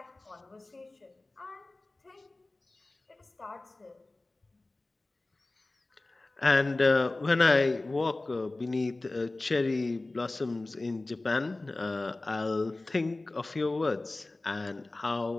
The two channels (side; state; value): right; quieter; 3.0 dB